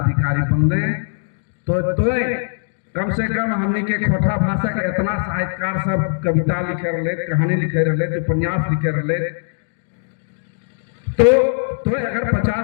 बनले, तो तोय कम से कम हमने के खोरठा भाषा के इतना साहित्यकार सब कविता लिखे रहे, कहानी लिखे रहे, उपन्यास लिखे रहे, तो अगर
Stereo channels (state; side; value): silent; right; digital silence